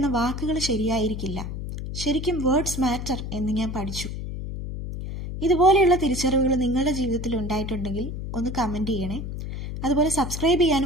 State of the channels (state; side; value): noise; left; hum, 6 dB below the sound